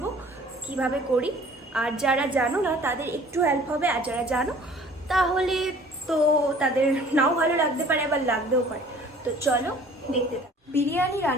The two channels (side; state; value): both; normal; correlation 0.50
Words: কিভাবে করি, আর যারা জানো না তাদের একটু হেল্প হবে, আর যারা জানো তাহলে তো তাদের নাও ভালো লাগতে পারে, আবার লাগতেও পারে। তো চলো দেখতে থাকো। বিরিয়ানি